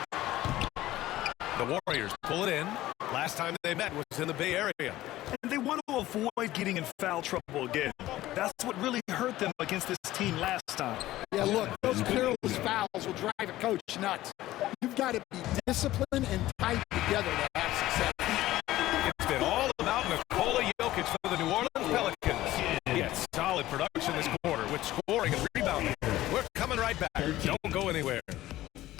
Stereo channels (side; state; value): right; quieter; 15.6 dB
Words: The Warriors pull it in. Last time they met was in the Bay Area. And they want to avoid getting in foul trouble again. That's what really hurt them against this team last time. Yeah, look, those careless fouls will drive a coach nuts. You've got to be disciplined and tight together to have success. It's been all about Nikola Jokic for the New Orleans Pelicans. He had solid production this quarter with scoring and rebounding. We're coming right back. Don't go anywhere.